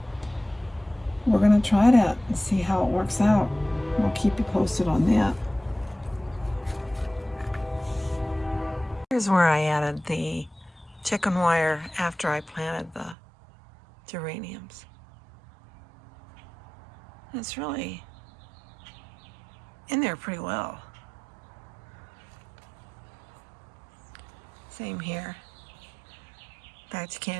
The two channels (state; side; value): drops out; left; at 13.2 s